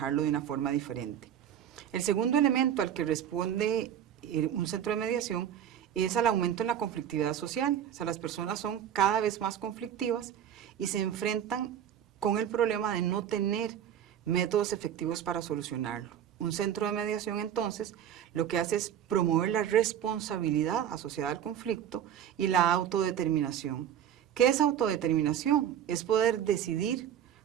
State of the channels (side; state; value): left; quieter; 9.8 dB